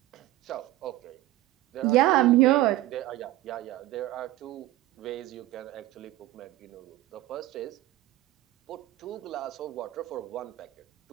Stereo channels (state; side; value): quieter; left; 16.1 dB